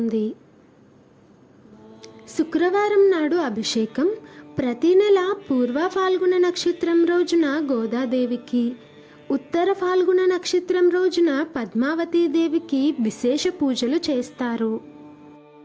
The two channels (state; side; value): identical; both; correlation 1.00